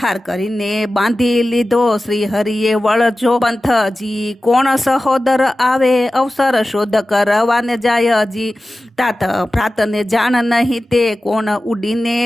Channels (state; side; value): normal; both; correlation 0.95